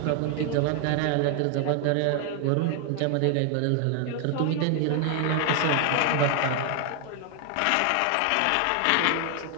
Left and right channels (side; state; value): both; different; correlation 0.00